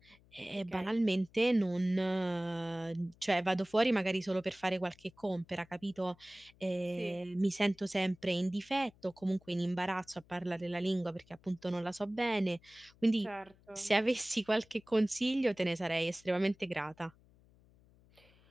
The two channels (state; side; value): noise; left; hum, 29 dB below the sound